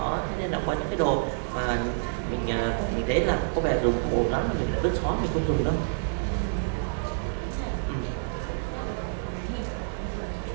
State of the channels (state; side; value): silent; left; 60 dB below the other